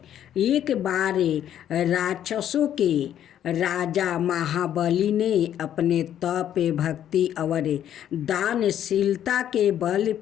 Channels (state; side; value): quieter; right; 10.6 dB